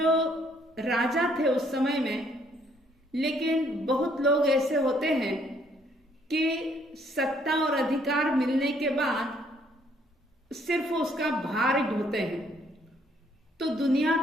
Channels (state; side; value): normal; both; correlation 0.66